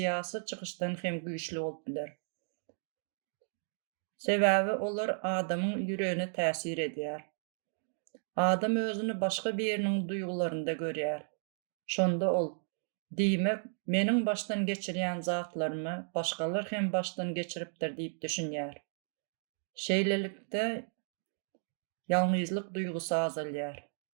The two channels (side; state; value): left; silent; digital silence